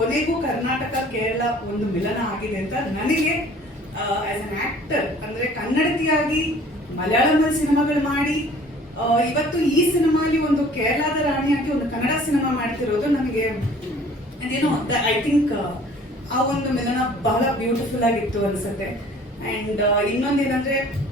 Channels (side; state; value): both; normal; correlation 0.51